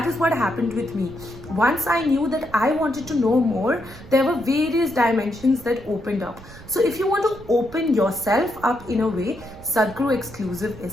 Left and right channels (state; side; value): noise; right; rumble, 18 dB below the sound